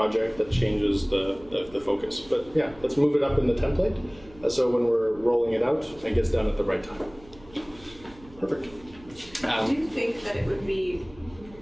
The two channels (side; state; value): right; noise; hum, 23 dB below the sound